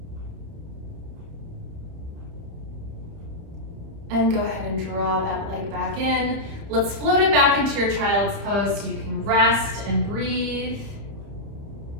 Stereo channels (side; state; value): left; late; 30 ms